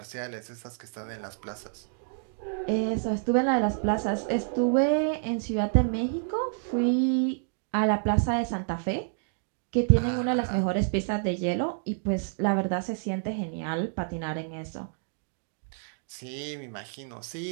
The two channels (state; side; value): silent; left; digital silence